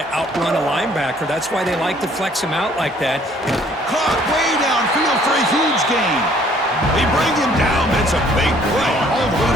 outrun a linebacker. That's why they like to flex him out like that. Caught way downfield for a huge gain. They bring him down, but it's a big play all the way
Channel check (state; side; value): normal; both; correlation 0.60